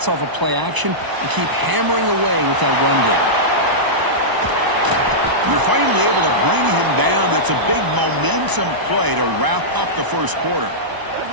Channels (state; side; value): late; left; 1.0 ms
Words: off of play action, and keep hammering away with that run game. You're finally able to bring him down. That's a big momentum play to wrap up the first quarter.